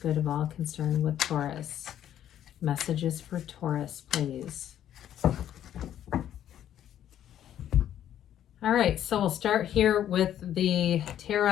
good of all concerned with Taurus? Messages for Taurus, please. All right, so we'll start here with the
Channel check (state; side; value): quieter; right; 10.9 dB